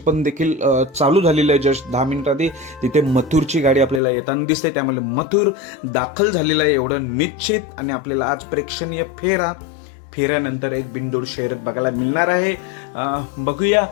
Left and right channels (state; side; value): drops out; right; at 4.0 s